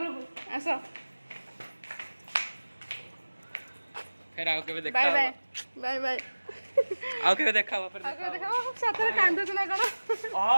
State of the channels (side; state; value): both; inverted; correlation -1.00